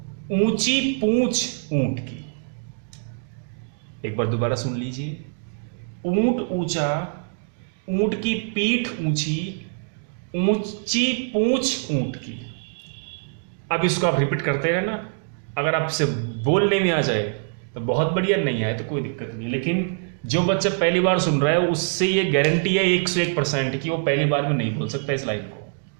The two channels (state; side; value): silent; left; digital silence